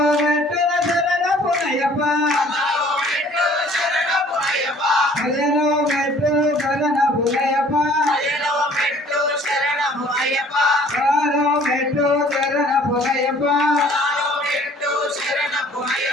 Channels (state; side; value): normal; both; correlation 0.54